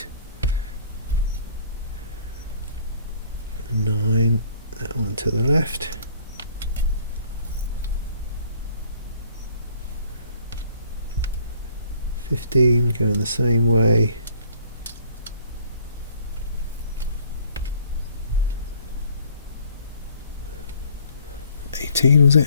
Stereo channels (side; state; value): both; inverted; correlation -0.58